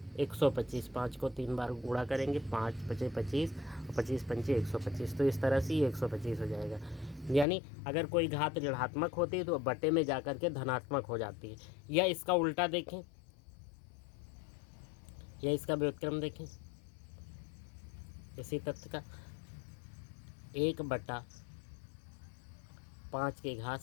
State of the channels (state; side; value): drops out; right; at 7.5 s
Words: 125, 5 को 3 बार गुणा करेंगे, 5 पचे 25 और 25 पंचे 125, तो इस तरह से ये 125 हो जाएगा। यानी अगर कोई घात ऋणात्मक होती है तो बटे में जाकर के धनात्मक हो जाती है। या इसका उल्टा देखें, या इसका व्युत्क्रम देखें इसी तथ्य का, 1/5 की घात